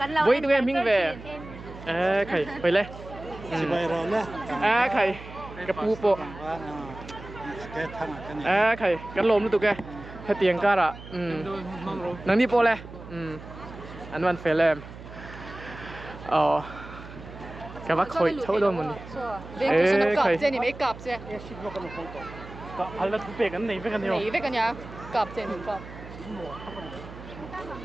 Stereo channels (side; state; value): right; noise; hum, 15 dB below the sound